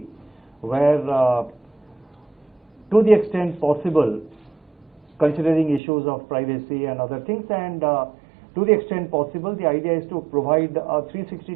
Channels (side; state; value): left; drops out; at 5.8 s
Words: where, to the extent possible, considering issues of privacy and other things, and to the extent possible, the idea is to provide a